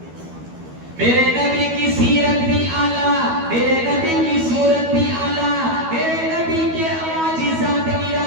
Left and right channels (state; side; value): late; left; 12 ms